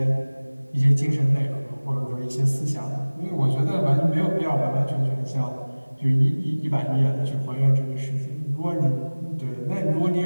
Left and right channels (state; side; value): inverted; both; correlation -1.00